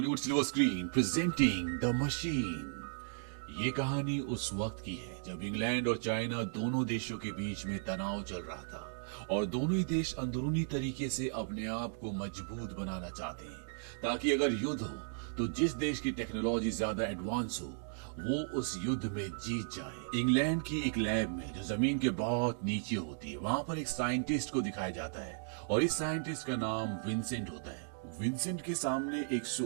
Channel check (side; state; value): left; silent; digital silence